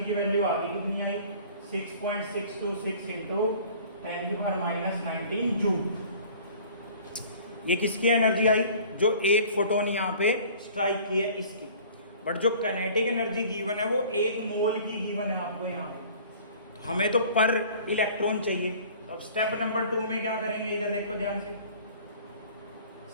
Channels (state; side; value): inverted; both; correlation -0.48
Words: की वैल्यू आ गई, कितनी आई, 6.626 इंटू 10 की पावर -19 जूल। ये किसकी एनर्जी आई, जो एक फोटोन यहाँ पे स्ट्राइक की है इसकी। बट जो काइनेटिक एनर्जी गिवन है वो 1 मोल की गिवन है आपको यहाँ पे। तो हमें तो पर इलेक्ट्रॉन चाहिए। तो अब स्टेप नंबर 2 में क्या करेंगे, इधर देखो ध्यान से।